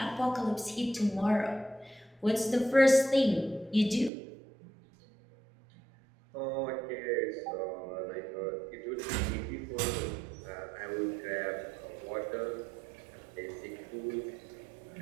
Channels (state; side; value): drops out; left; at 4.1 s